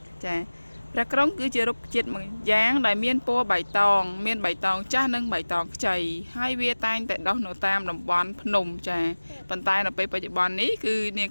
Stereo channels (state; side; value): inverted; both; correlation -1.00